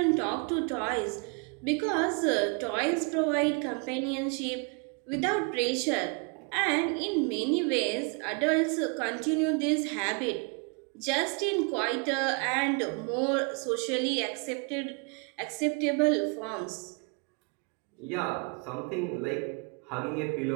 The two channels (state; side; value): quieter; left; 35.3 dB